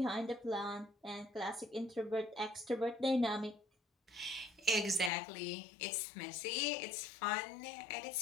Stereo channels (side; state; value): right; drops out; at 5.1 s